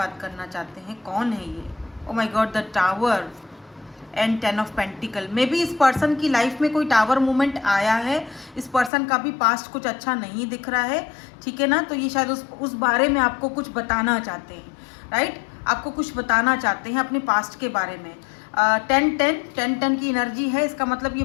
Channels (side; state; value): right; drops out; at 8.9 s